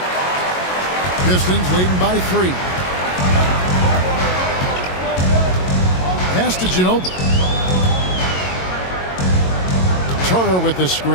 Pistons leading by 3. Pass to Ginobili. Turner with the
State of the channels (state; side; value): late; right; 22 ms